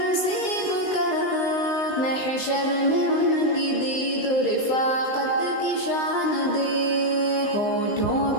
کر، محشر میں ان کی دید و رفاقت کی شان دے۔ ہونٹوں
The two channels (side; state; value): right; late; 19 ms